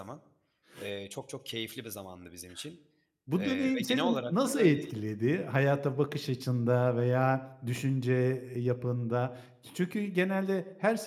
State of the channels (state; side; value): identical; both; correlation 1.00